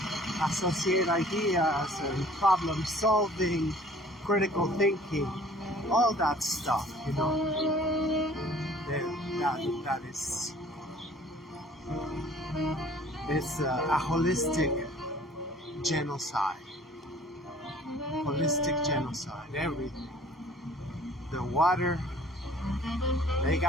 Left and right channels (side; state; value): both; normal; correlation 0.52